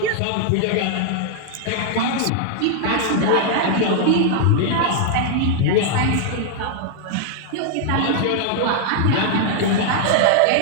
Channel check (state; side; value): different; both; correlation -0.01